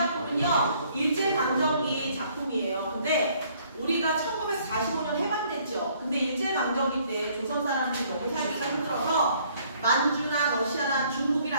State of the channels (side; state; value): both; inverted; correlation -0.62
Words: 일제강점기 작품이에요. 근데 우리가 1945년 해방됐죠. 근데 일제강점기 때 조선 사람들이 너무 살기가 힘들어서 만주나 러시아나